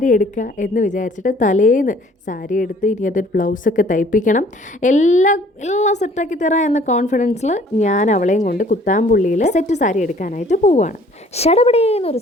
എടുക്കുക എന്ന് വിചാരിച്ചിട്ട് തലേന്ന് സാരി എടുത്ത് ഇനി അതൊരു ബ്ലൗസൊക്കെ തയ്പ്പിക്കണം, എല്ലാം സെറ്റാക്കി തരാം എന്ന കോൺഫിഡൻസിൽ ഞാൻ അവളെയും കൊണ്ട് കുത്താമ്പുള്ളിയിൽ സെറ്റ് സാരി എടുക്കാനായിട്ട് പോവുകയാണ്. ഷടപടേന്നൊരു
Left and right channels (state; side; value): normal; both; correlation 0.56